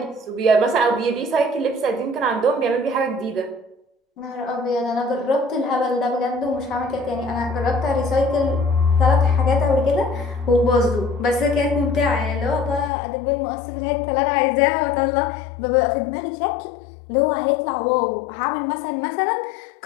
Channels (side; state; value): right; drops out; at 12.9 s